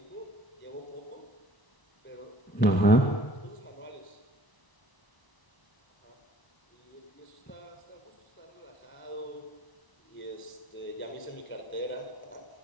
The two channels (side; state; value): right; late; 1.0 ms